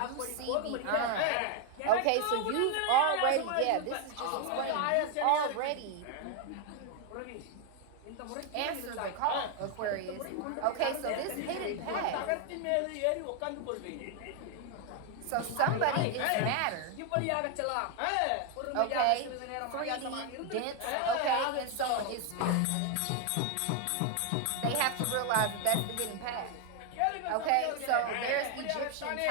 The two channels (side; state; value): both; different; correlation 0.01